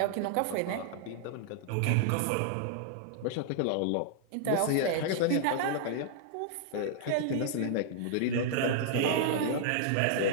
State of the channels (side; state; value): both; different; correlation -0.01